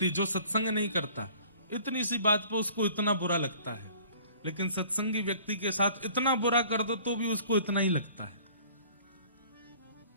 जो सत्संग नहीं करता, इतनी सी बात पर उसको इतना बुरा लगता है, लेकिन सत्संगी व्यक्ति के साथ इतना बुरा कर दो तो भी उसको इतना ही लगता है।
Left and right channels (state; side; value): inverted; both; correlation -0.51